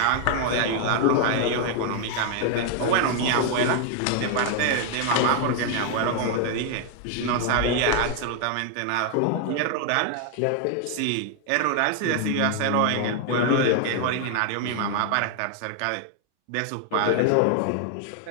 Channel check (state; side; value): different; both; correlation 0.00